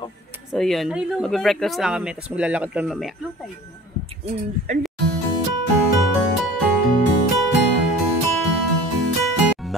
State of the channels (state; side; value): normal; both; correlation 0.44